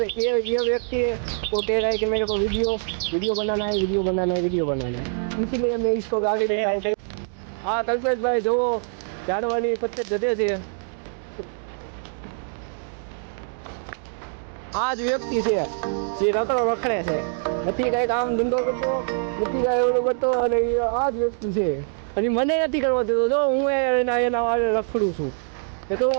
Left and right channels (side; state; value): left; silent; digital silence